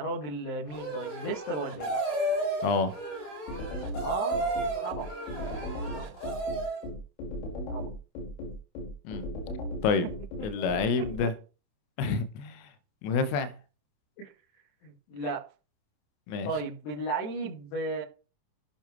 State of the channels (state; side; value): late; right; 27 ms